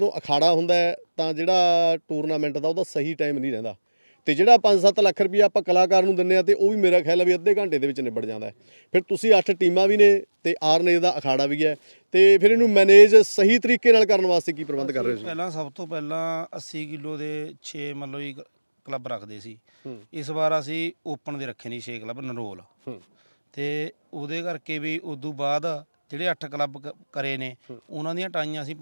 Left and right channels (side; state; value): both; inverted; correlation -1.00